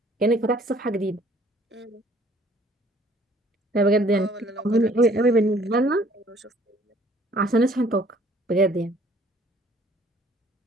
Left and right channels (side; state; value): both; normal; correlation 0.58